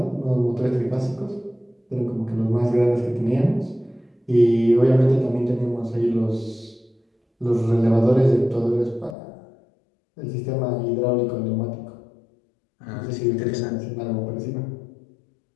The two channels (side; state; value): right; drops out; at 9.2 s